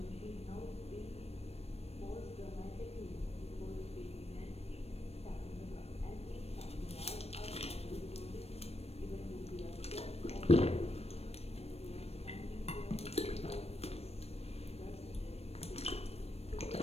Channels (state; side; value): late; right; 0.30 ms